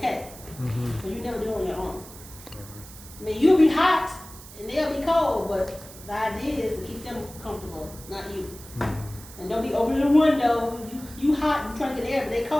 But you never do it on your own. I mean, you'll be hot and they'll be cold, but the idea is to keep them comfortable, not you. And don't be opening the window. You hot and trying to get air, but they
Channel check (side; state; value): right; noise; hiss, 17 dB below the sound